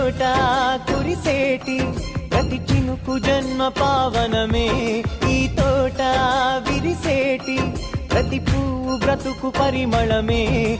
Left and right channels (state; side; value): identical; both; correlation 1.00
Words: కురిసేటి ప్రతి చినుకు జన్మ పావనమే, ఈ తోట విరిసేటి ప్రతి పువ్వు బ్రతుకు పరిమళమే,